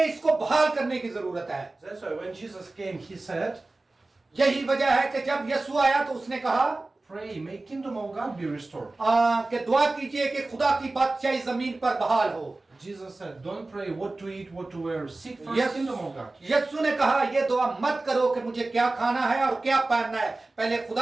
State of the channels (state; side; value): quieter; left; 3.1 dB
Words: इसको बहाल करने की जरूरत है। That's why when Jesus came, he said, यही वजह है कि जब यीशु आया तो उसने कहा pray, may kingdom of God be restored. कि दुआ कीजिए कि खुदा की बादशाही जमीन पर बहाल हो। Jesus said, don't pray what to eat, what to wear. Seek first kingdom of God. यीशु ने कहा ये दुआ मत करो कि मुझे क्या खाना है और क्या पहनना है, पहले